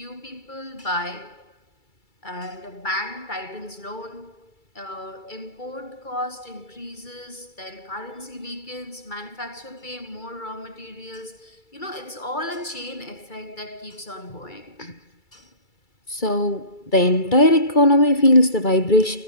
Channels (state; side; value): late; right; 2.3 ms